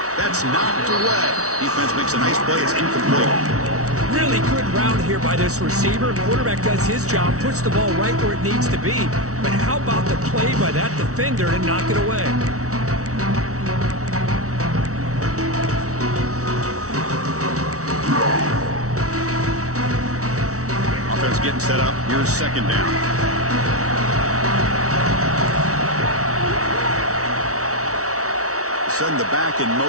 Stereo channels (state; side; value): late; left; 0.65 ms